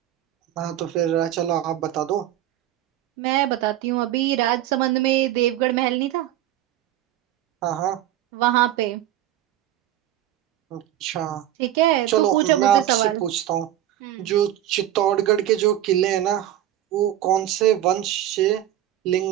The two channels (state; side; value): quieter; left; 12.8 dB